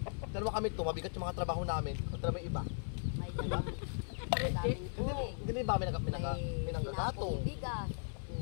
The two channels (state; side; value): silent; right; 53 dB below the other